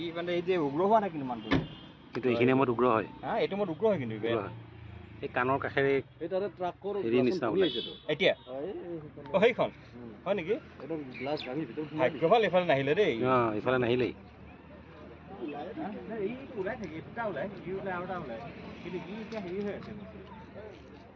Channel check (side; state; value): both; identical; correlation 1.00